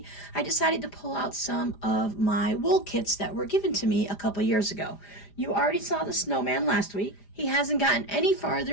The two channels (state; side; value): late; right; 4.9 ms